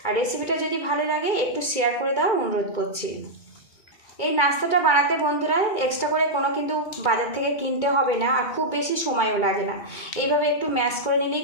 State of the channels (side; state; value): right; late; 2.3 ms